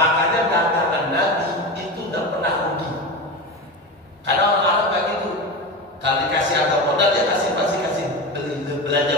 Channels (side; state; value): both; normal; correlation 0.24